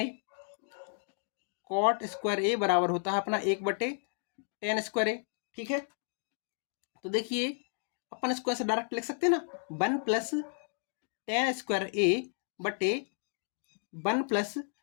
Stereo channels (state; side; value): silent; right; 56 dB below the other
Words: ए, कॉट स्क्वायर ए बराबर होता है अपना 1 बटे tan स्क्वायर ए। ठीक है, तो देखिए अपन इसको ऐसे डायरेक्ट लिख सकते हैं ना, 1 + tan स्क्वायर ए बटे 1 +